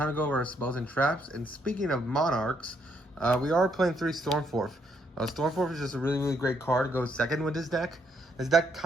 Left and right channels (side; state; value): both; normal; correlation 0.73